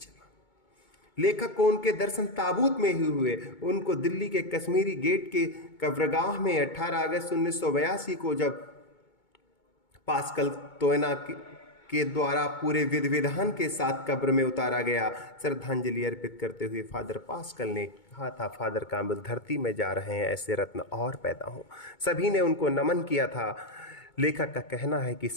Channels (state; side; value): late; right; 2.2 ms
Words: लेखक को उनके दर्शन ताबूत में ही हुए। उनको दिल्ली के कश्मीरी गेट के कब्रगाह में 18 अगस्त 1982 को जब पास्कल तोयना के द्वारा पूरे विधि विधान के साथ कब्र में उतारा गया। श्रद्धांजलि अर्पित करते हुए फादर पास्कल ने कहा था, फादर काम्बल धरती में जा रहे हैं, ऐसे रत्न और पैदा हों। सभी ने उनको नमन किया था। लेखक का कहना है कि